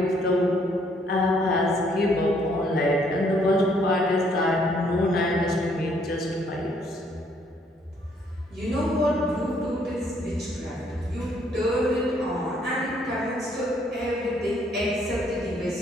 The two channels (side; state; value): both; normal; correlation 0.67